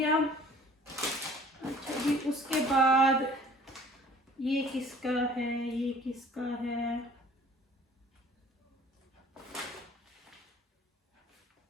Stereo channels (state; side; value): normal; both; correlation 0.51